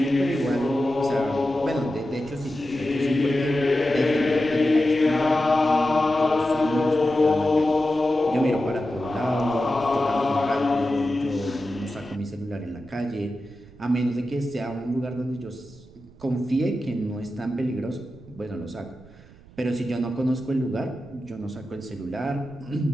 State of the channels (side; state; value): right; noise; rumble, 23 dB below the sound